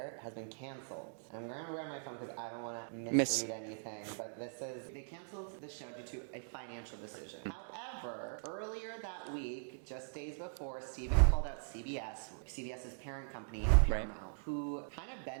has been canceled. I'm going to grab my phone because I don't want to misread anything, but they canceled the show due to a financial decision. However, earlier that week, just days before, Stephen called out CBS's parent company, Paramount, who kind of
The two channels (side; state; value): left; silent; digital silence